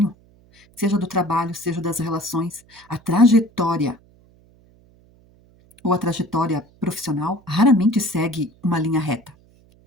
seja do trabalho, seja das relações, a trajetória ou a trajetória profissional raramente segue uma linha reta.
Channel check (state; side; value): noise; right; hum, 30 dB below the sound